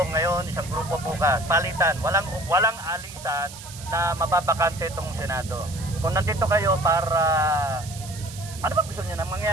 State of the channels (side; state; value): right; noise; hiss, 15 dB below the sound